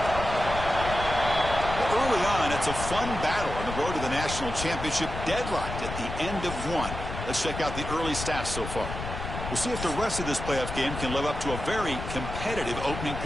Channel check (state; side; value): noise; left; rumble, 7 dB below the sound